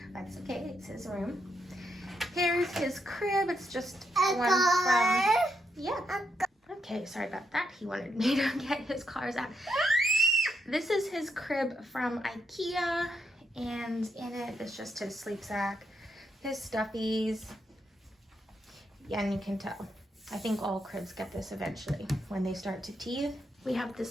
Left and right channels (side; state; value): both; normal; correlation 0.80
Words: that's okay, it's his room. Here's his crib. It's just one from, yeah. Okay, sorry about that. He wanted me to get his cars out. This is his crib from IKEA, and in it is just his sleep sack, his stuffies, yeah, and you can tell. I think all cribs get this eventually when they start to teeth. We have